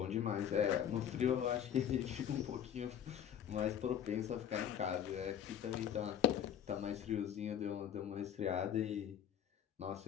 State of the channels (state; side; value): quieter; right; 9.5 dB